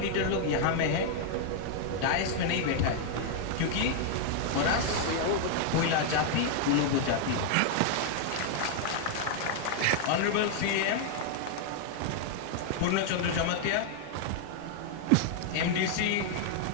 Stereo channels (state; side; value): different; both; correlation -0.01